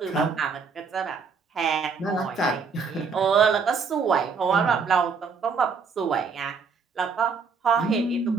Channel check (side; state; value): left; quieter; 5.2 dB